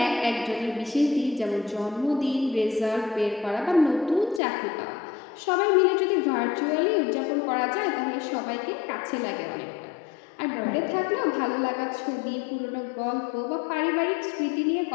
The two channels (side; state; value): right; drops out; at 4.4 s